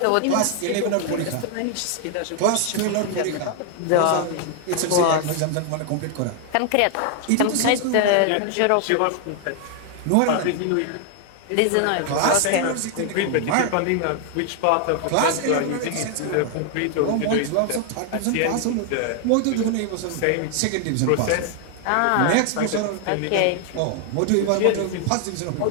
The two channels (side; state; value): both; different; correlation 0.00